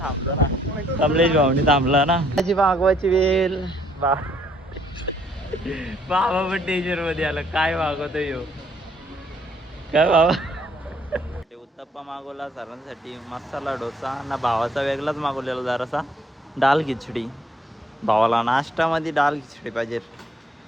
ना. कमलेश भाऊनी थांबला ना, माझी मागवायची वेळ. बाबा पण डेंजर मध्ये आला, काय मागवतो यो काय बाबा. उत्तप्पा मागवला सरांसाठी, मसाला डोसा ना, भावाचा वेगळाच मागवलेला जरासा डाल खिचडी. भावाला नाश्त्यामध्ये डाल खिचडी पाहिजे.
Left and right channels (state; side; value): normal; both; correlation 0.66